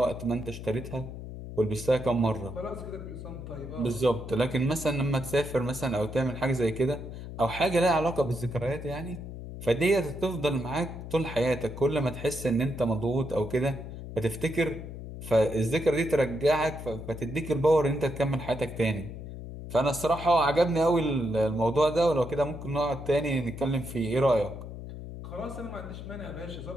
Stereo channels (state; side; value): noise; left; hum, 10 dB below the sound